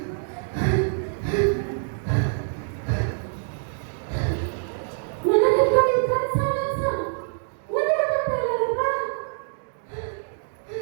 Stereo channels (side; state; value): left; silent; digital silence